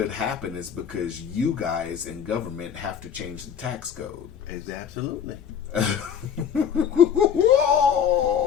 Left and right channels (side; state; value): right; quieter; 7.9 dB